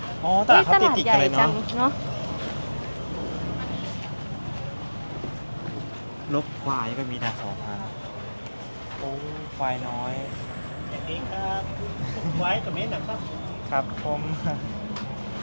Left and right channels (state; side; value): inverted; both; correlation -1.00